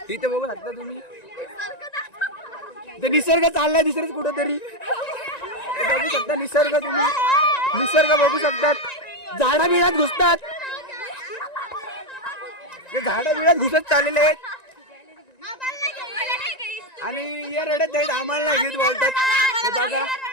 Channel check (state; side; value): late; right; 1.9 ms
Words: इथे बघू शकता तुम्ही, इथे निसर्ग चाललाय दुसरंच कुठं तरी. बघू शकता निसर्ग, तुम्ही निसर्ग बघू शकतात. झाडा बिळात घुसतात, ते झाडा बिळात घुसत चाललेले आहेत आणि या रडत आहेत, आम्हाला नाही घेत बोलतात. हे बघा,